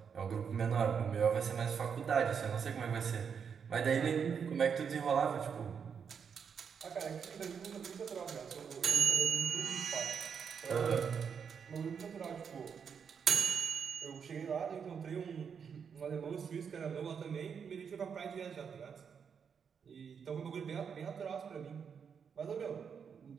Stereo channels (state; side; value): quieter; left; 6.8 dB